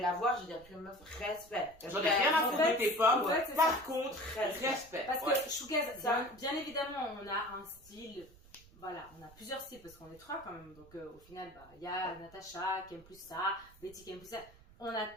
la voir, je vais dire, meuf, respect. J'en ai rien à foutre de tes pommes, par contre, respect. Parce que Shougaz, bien évidemment, on a un style, voilà, on a plusieurs styles, parce qu'on est 3 quand même. Donc au final, il y a Natacha qui aime plus ça, Betty qui aime plus ça. On a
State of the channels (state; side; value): noise; right; rumble, 24 dB below the sound